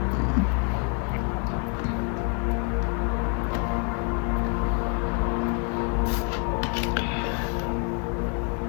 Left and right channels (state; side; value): quieter; right; 39.1 dB